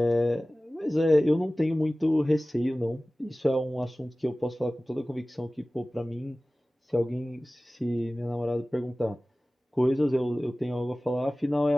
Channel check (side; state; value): both; normal; correlation 0.97